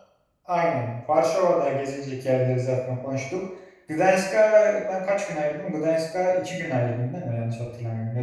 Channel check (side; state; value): both; identical; correlation 1.00